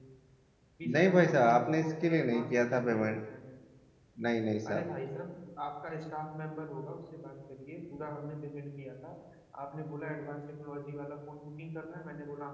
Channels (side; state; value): both; identical; correlation 1.00